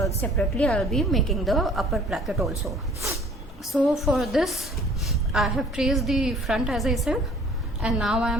separately I will be making the upper placket also. So for this, I have traced the front as I said, and now I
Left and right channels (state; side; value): normal; both; correlation 0.53